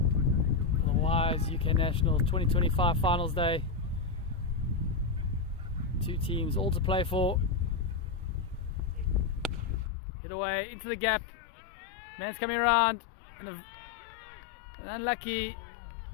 The Wise UK National 2025 Finals Day. 2 teams all to play for. Hit away into the gap. Man's coming around and unlucky,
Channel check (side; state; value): right; drops out; at 9.9 s